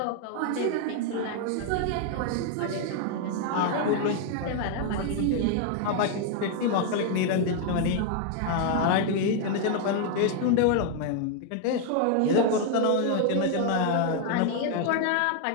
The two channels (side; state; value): both; different; correlation 0.00